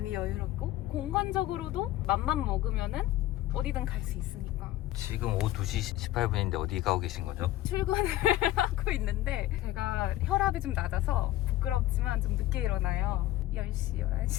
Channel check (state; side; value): quieter; right; 15.2 dB